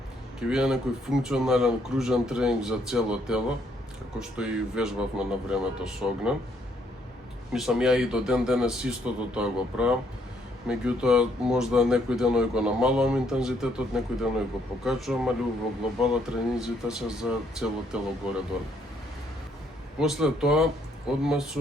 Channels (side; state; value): both; normal; correlation 0.70